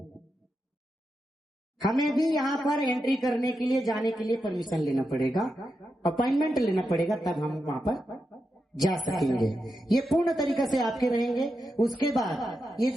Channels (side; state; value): both; normal; correlation 0.87